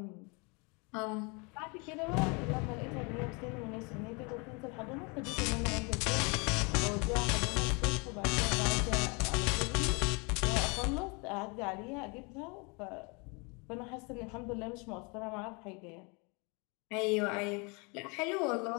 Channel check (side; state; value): right; quieter; 31.0 dB